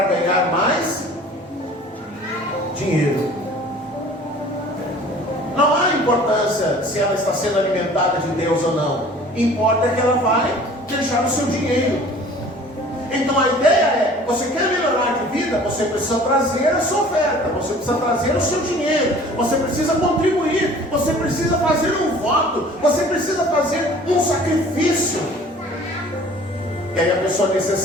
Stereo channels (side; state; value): both; normal; correlation 0.48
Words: ganhar mais dinheiro. Não há importância se ela está sendo alimentada de Deus ou não. Importa que ela vai deixar o seu dinheiro. Então a ideia é, você quer melhorar de vida, você precisa trazer a sua oferta, você precisa trazer o seu dinheiro, você precisa contribuir, você precisa fazer um voto, você precisa fazer um sacrifício. E aí a pessoa